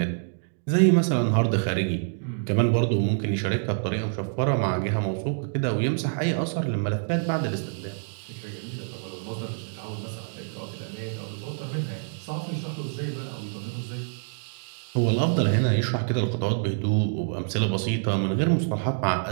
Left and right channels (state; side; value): silent; left; digital silence